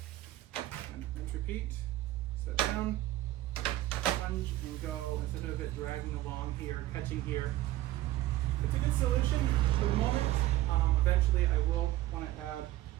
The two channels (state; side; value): quieter; left; 15.8 dB